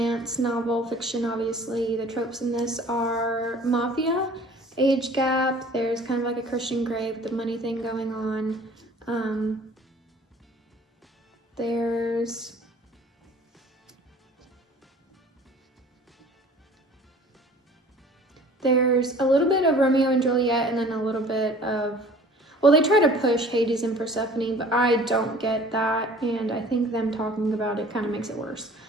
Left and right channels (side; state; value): both; normal; correlation 0.48